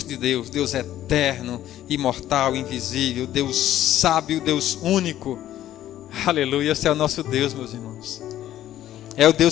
de Deus. Deus é eterno, imortal, invisível. Deus sábio, Deus único. Aleluia, esse é o nosso Deus, meus irmãos. É o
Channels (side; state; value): right; quieter; 12.7 dB